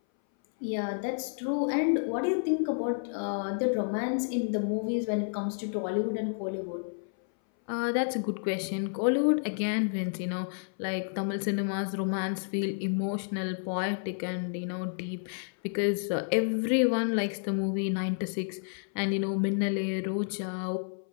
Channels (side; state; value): right; silent; 58 dB below the other